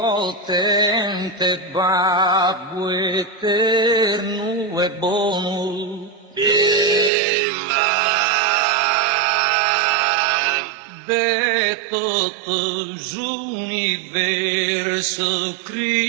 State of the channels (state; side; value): drops out; left; at 7.1 s